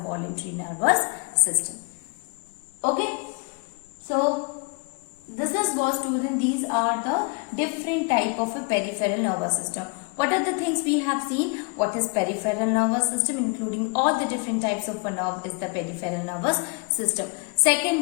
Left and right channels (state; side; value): quieter; right; 32.4 dB